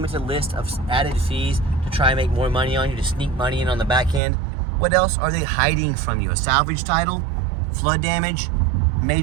list of added fees to try and make more money on you, to sneak money in on the back end, what else are they hiding from you? A salvage title, flood damage,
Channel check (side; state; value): left; drops out; at 4.2 s